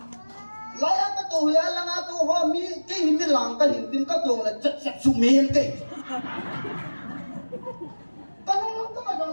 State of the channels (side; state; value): both; inverted; correlation -1.00